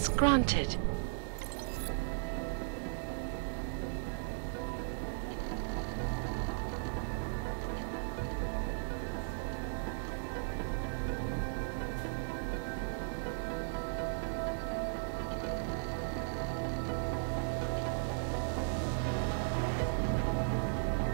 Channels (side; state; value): left; silent; digital silence